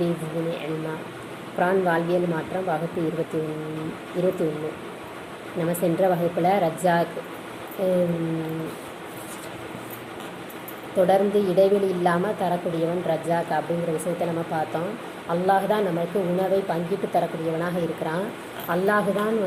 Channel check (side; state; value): both; identical; correlation 1.00